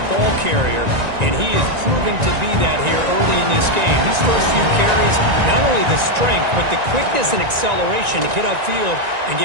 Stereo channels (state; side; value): late; left; 1.9 ms